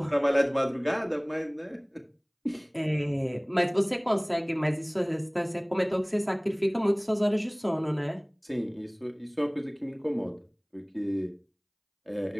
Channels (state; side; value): identical; both; correlation 1.00